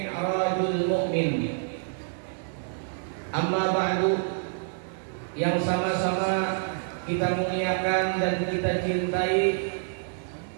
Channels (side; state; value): left; silent; digital silence